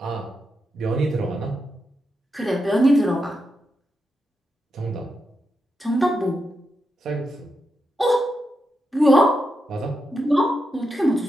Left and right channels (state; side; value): normal; both; correlation 0.86